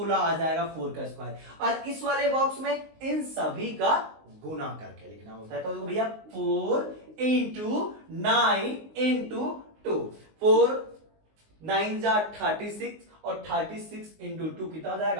आ जाएगा 4 का स्क्वायर। और इस वाले बॉक्स में इन सभी का गुना करके लिखना होता है। तो भैया 4 इंटू 9 इंटू 2, 4 9 जा 36, और 36 इंटू 2 कितना हो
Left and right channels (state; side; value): late; left; 19 ms